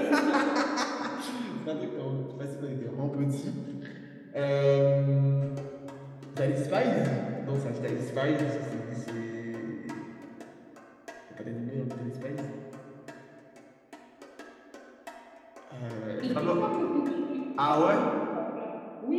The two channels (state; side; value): identical; both; correlation 1.00